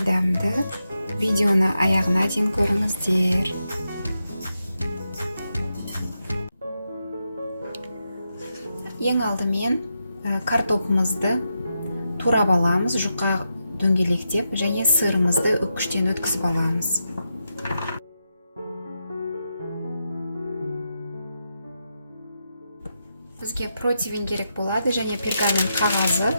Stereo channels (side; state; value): both; inverted; correlation -0.86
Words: дәмді. Видеоны аяғына дейін көріңіздер. Ең алдымен картопымызды турап аламыз, жұқа дөңгелектеп, және сырымызды үккіштен өткізіп аламыз. Бізге противень керек болады, және пергамент қағазы